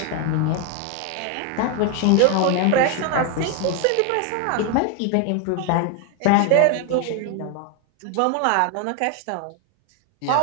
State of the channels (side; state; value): both; different; correlation 0.01